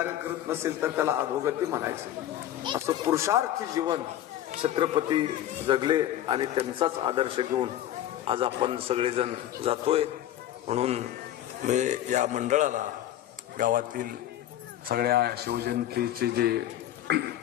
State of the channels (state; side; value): quieter; right; 12.3 dB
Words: करत नसेल तर त्याला अधोगती म्हणायचं. असं पुरुषार्थी जीवन छत्रपती जगले आणि त्यांचाच आदर्श घेऊन आज आपण सगळेजण जातोय. म्हणून मी या मंडळाला, गावातील सगळ्या शिवजयंतीचे जे